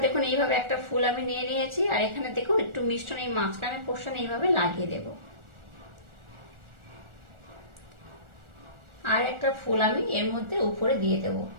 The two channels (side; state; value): left; late; 1.4 ms